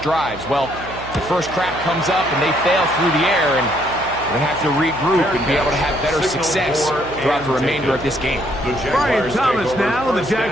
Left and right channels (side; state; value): right; noise; hum, 15 dB below the sound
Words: Well, the first crack comes up and they fail through the air, and we're going to have to regroup and be able to have better success throughout the remainder of this game. Brian Thomas now, the